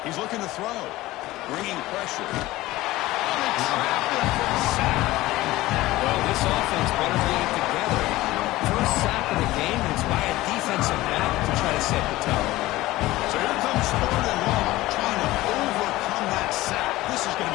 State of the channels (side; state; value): right; quieter; 17.8 dB